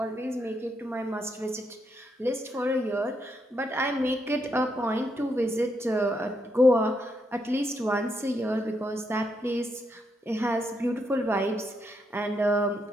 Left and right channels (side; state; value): both; normal; correlation 0.79